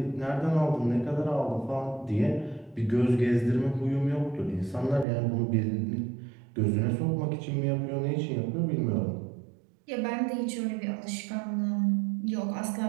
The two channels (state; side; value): drops out; left; at 5.1 s